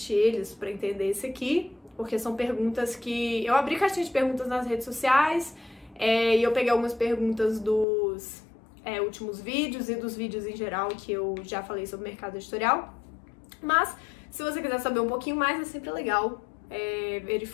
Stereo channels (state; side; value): drops out; right; at 7.9 s